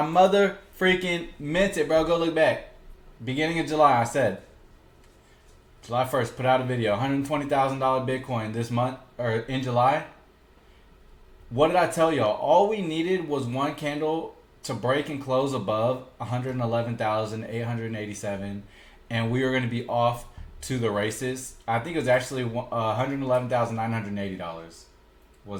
mother freaking meant it, bro. Go look back. Beginning of July, I said. July 1st, put out a video. $120,000 Bitcoin this month, or in July. What did I tell y'all? All we needed was one candle to break and close above 111,887. And we were going to be off to the races. I think it was actually $111,980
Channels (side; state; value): both; identical; correlation 1.00